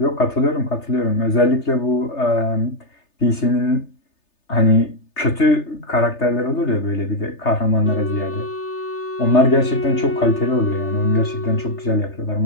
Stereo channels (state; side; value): late; right; 3.3 ms